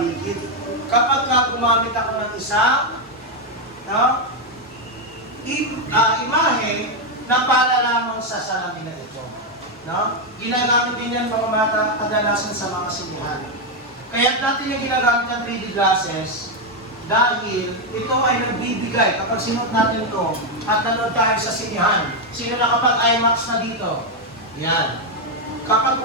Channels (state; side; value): normal; both; correlation 0.04